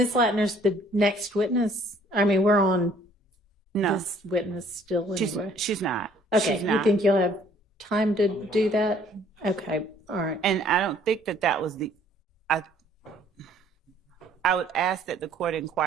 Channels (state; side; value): normal; both; correlation 0.59